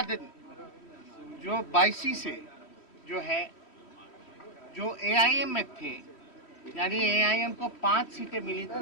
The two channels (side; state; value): right; late; 3.1 ms